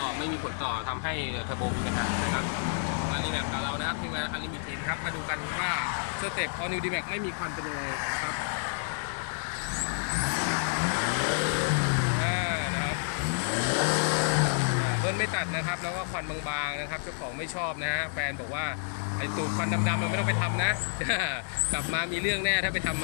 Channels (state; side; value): silent; right; digital silence